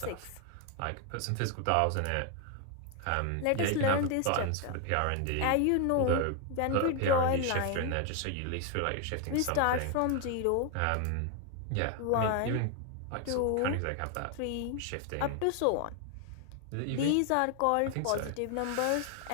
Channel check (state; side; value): different; both; correlation 0.01